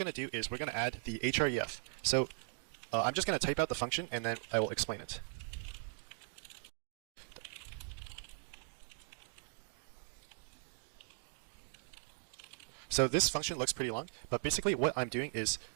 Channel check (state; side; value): silent; left; 52 dB below the other